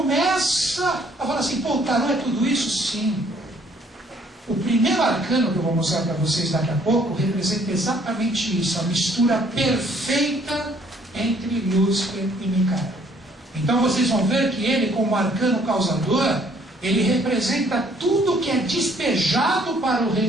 a falar assim: pô, o tarô é tudo isso? Sim. O primeiro arcano que eu vou mostrar para vocês daqui a pouco representa exatamente isso, a mistura perfeita entre Lúcifer e Micael. Então vocês vão ver que ele, como arcano causador, ele representa tudo que é despejado para o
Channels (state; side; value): normal; both; correlation 0.63